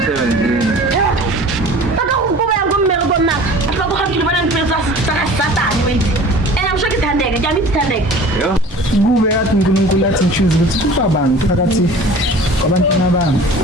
Kube yathi uNkulunkulu athi ngichoose ukuthi ubabani phakathi kwabantwana bami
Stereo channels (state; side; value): normal; both; correlation 0.43